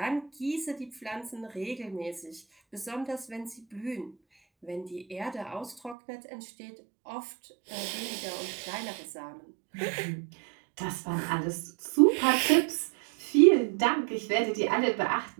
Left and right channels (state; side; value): drops out; left; at 6.0 s